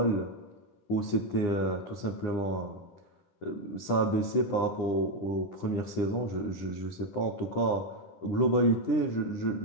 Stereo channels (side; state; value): right; late; 9.9 ms